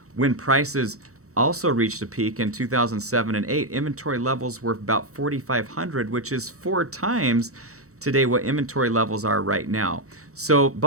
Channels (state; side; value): late; left; 0.65 ms